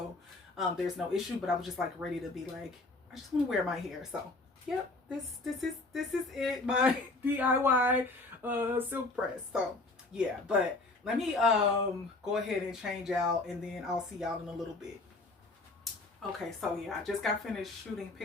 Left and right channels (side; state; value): right; quieter; 3.2 dB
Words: there's no issue. But I was just like ready to be like, I just want to wear my hair. So yep, this is it, my DIY silk press. So yeah, but let me go ahead and change out, and then I'll see y'all in a little bit. Okay, so yeah, I just got finished shooting